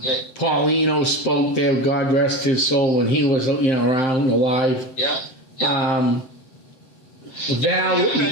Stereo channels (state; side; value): late; right; 7.7 ms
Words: spoke there, God rest his soul, when he was around, alive. Yeah. They have